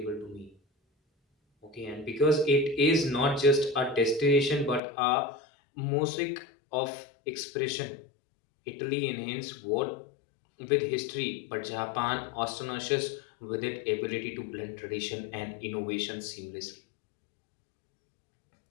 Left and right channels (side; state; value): right; drops out; at 4.8 s